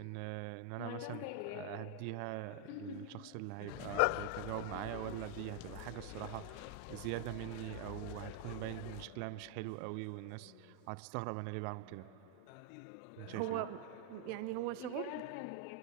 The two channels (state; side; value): different; both; correlation 0.00